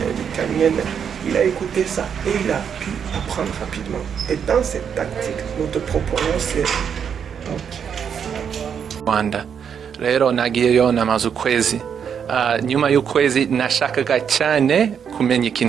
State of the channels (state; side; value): quieter; left; 7.6 dB